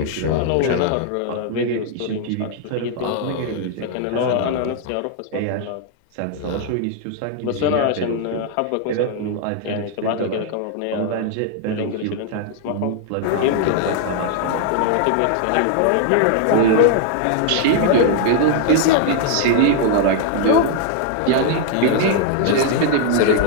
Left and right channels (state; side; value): different; both; correlation 0.00